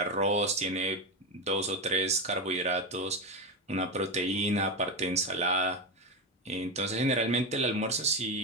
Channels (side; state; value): both; normal; correlation 0.14